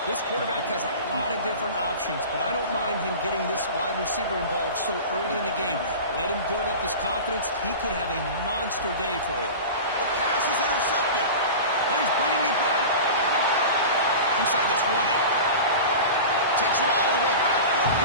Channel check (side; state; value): both; inverted; correlation -0.32